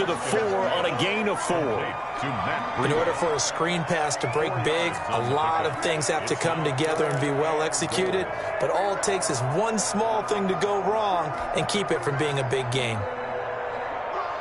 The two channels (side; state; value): both; identical; correlation 1.00